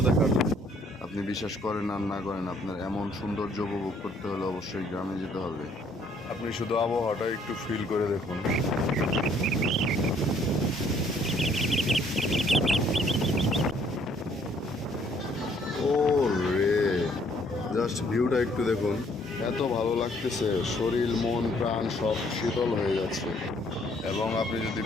দেখার। আপনি বিশ্বাস করেন আর না করেন, আপনার এমন সৌন্দর্য উপভোগ করতে হলে অবশ্যই গ্রামে যেতে হবে। আপনি শুধু আবহাওয়াটা একটু ফিল করে দেখুন। ও রে, জাস্ট ভিউটা একটু দেখুন। এত ভালো লাগতেছে, শরীর মন প্রাণ সব শীতল হয়ে যাচ্ছে। এবং আপনি যদি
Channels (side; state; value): both; normal; correlation 0.64